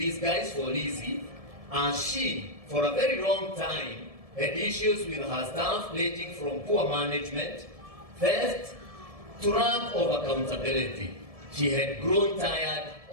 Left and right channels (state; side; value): late; left; 1.7 ms